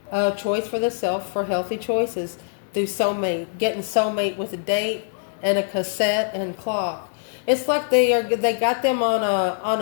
a choice for themselves for healthy choices through soulmate, getting soulmate with a date and a cassette and clock. It's like they got them on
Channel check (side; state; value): right; silent; 63 dB below the other